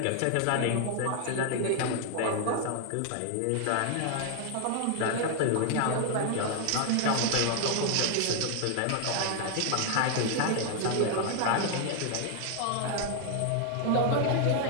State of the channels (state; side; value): different; both; correlation 0.00